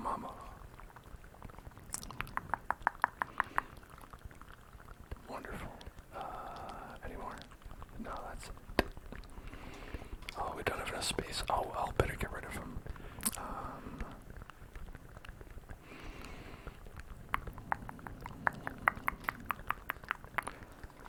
mama. Wonderful. Any more? No, that's it. Oh, we don't have enough space. Oh, well, better get rid of them.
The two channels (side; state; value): both; identical; correlation 1.00